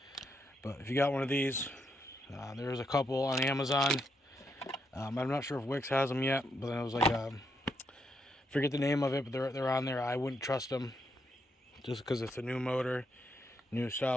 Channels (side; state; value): both; normal; correlation 0.79